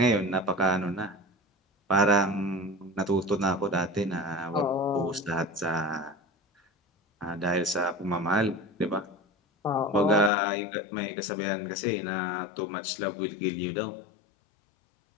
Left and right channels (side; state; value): right; drops out; at 10.3 s